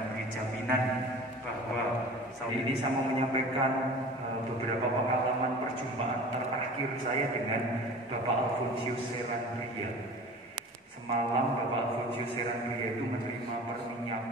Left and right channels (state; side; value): normal; both; correlation 0.40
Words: jaminan bahwa saat ini saya mau menyampaikan beberapa pengalaman perjumpaan terakhir saya dengan Bapak Alfonsius Serandria. Semalam Bapak Alfonsius Serandria itu menerima